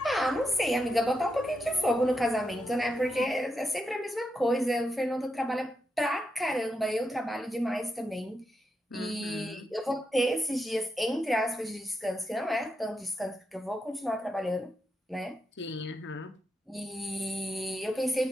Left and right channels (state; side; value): normal; both; correlation 0.85